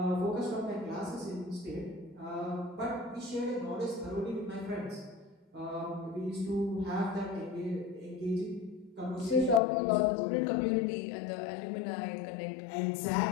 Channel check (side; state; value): right; drops out; at 9.6 s